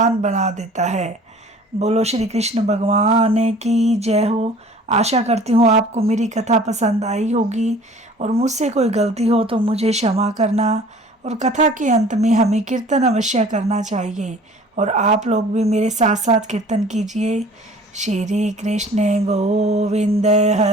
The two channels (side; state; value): both; normal; correlation 0.48